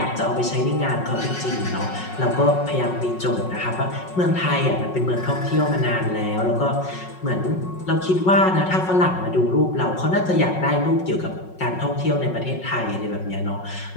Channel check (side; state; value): right; late; 5.4 ms